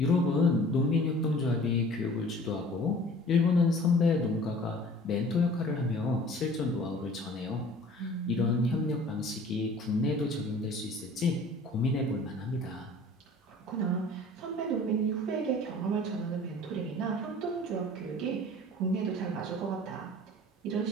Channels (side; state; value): both; normal; correlation 0.47